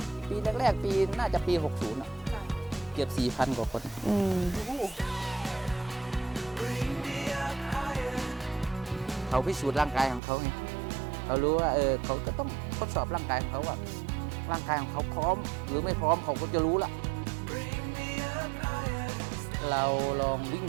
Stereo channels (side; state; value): left; drops out; at 10.2 s